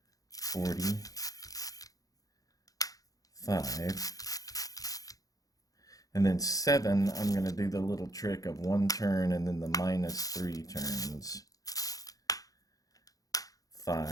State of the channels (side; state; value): right; late; 0.17 ms